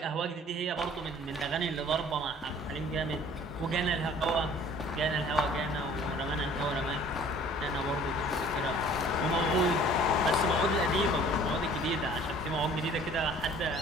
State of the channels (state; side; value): normal; both; correlation 0.51